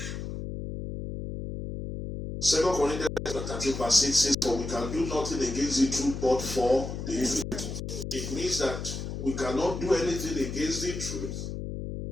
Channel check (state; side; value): noise; left; hum, 6 dB below the sound